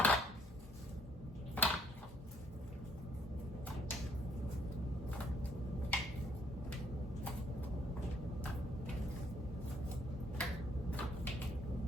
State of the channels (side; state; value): both; normal; correlation 0.65